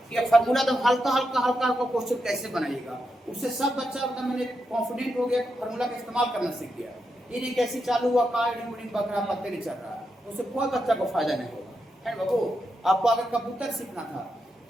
कि फार्मूला तो हल्का क्वेश्चन कैसे बनाइएगा, उससे सब बच्चा एकदम मैंने कॉन्फिडेंट हो गया, फार्मूला का इस्तेमाल करना सीख गया। ये कैसे चालू हुआ, कार्डिंग बकरा पत्ते नहीं चल रहा है, उससे कोई बच्चा को फायदा नहीं होगा, है बाबू? आपको अगर कबूतर सीखना था,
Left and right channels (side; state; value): both; normal; correlation 0.85